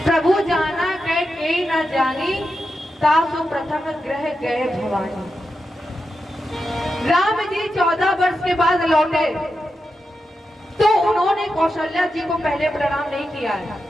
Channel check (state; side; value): normal; both; correlation 0.88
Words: प्रभु जाना गए के न जानी, तासु प्रथम ग्रह गए भवानी। राम जी 14 वर्ष के बाद लौटे तो उन्होंने कौशल्या जी को पहले प्रणाम नहीं किया है,